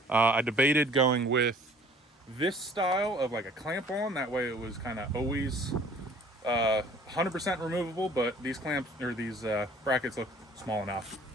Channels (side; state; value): both; normal; correlation 0.53